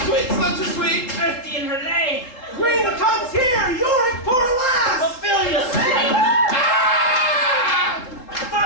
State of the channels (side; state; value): right; late; 3.8 ms